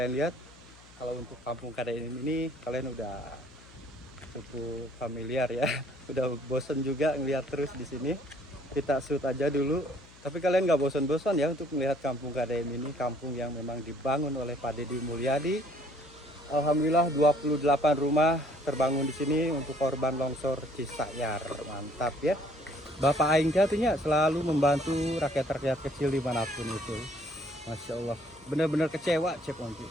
lihat, kalau untuk kampung KDM ini kalian udah cukup familiar ya. Udah bosen juga ngeliat terus di sini. Kita shoot aja dulu. Tapi kalian nggak bosan-bosan ya untuk melihat kampung KDM ini, kampung yang memang dibangun oleh Pak Deddy Mulyadi. Alhamdulillah 28 rumah terbangun di sini untuk korban longsor Cisayar. Mantap ya. Bapak Aing jatuhnya selalu membantu rakyat-rakyat kecil dimanapun itu. Masya Allah. Bener-bener kecewa Chef Monji.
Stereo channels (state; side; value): noise; left; hum, 24 dB below the sound